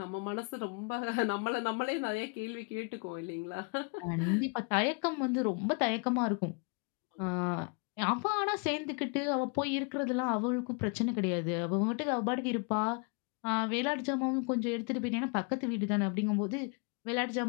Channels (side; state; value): right; quieter; 35.0 dB